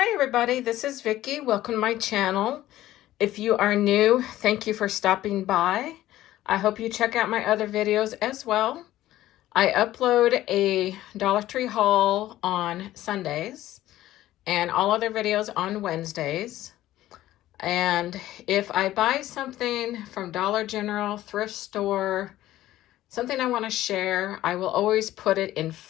everybody, this is Vicky. Welcome to my channel. If you are new, thank you for stopping by. I hope you check out my other videos as well. I upload a Dollar Tree haul on Sundays and all other videos on Wednesdays. And if I buy something from Dollar General, thrift store, something I want to share, I will always put it in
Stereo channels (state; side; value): quieter; right; 14.6 dB